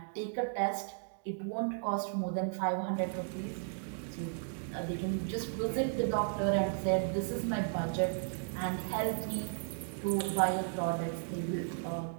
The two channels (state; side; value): silent; left; digital silence